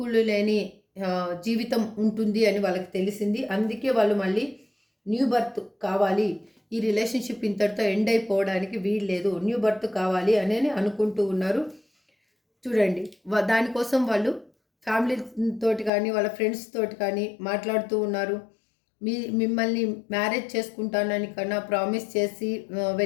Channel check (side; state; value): right; drops out; at 15.9 s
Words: లేని జీవితం ఉంటుంది అని వాళ్ళకి తెలిసింది. అందుకే వాళ్ళు మళ్ళీ న్యూ బర్త్ కావాలి, ఈ రిలేషన్షిప్ ఇంతటితో ఎండ్ అయిపోవడానికి వీలు లేదు, న్యూ బర్త్ కావాలి అని అనుకుంటూ ఉన్నారు. చూడండి, దానికోసం వాళ్ళు ఫ్యామిలీ తోటి కానీ వాళ్ళ ఫ్రెండ్స్ తోటి కానీ మాట్లాడుతూ ఉన్నారు. మిమ్మల్ని మ్యారేజ్ చేసుకుంటానని కన్నా ప్రామిస్ చేసి